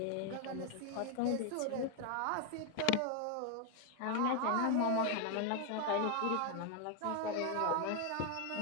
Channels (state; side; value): different; both; correlation 0.01